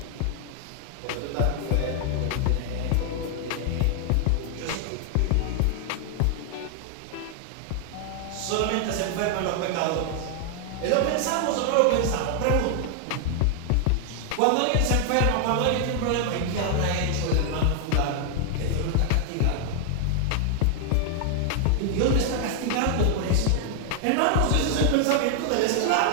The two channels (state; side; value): different; both; correlation 0.00